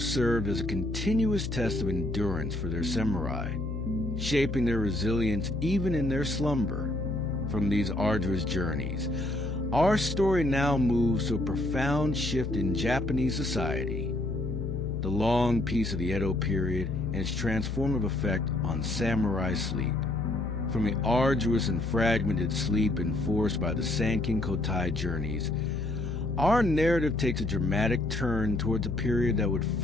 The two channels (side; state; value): left; noise; hum, 4 dB below the sound